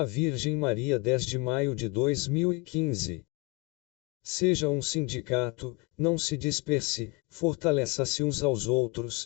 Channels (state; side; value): quieter; right; 25.1 dB